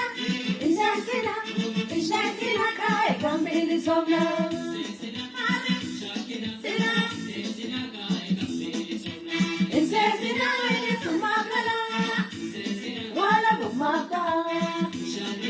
Inesina, Inshakina Kai, Gambili Sona. Male, Sina, Insesina, Sumakala, Wala Bumaka,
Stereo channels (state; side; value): identical; both; correlation 1.00